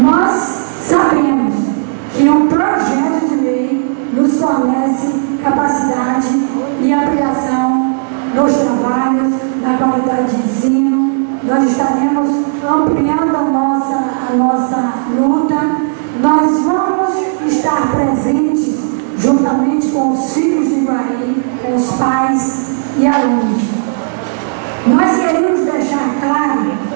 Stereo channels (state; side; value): silent; left; digital silence